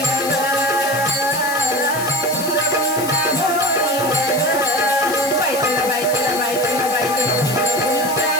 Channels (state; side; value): noise; left; hiss, 9 dB below the sound